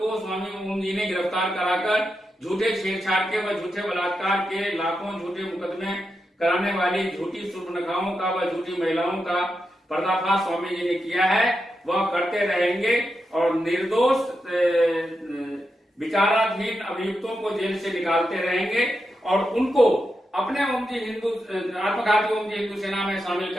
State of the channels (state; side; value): normal; both; correlation 0.87